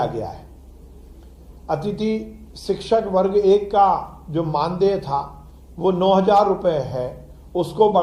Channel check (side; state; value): both; identical; correlation 1.00